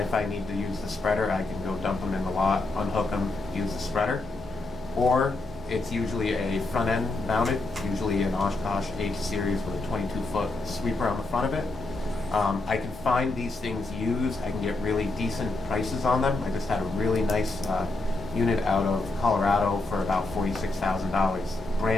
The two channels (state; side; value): quieter; right; 3.1 dB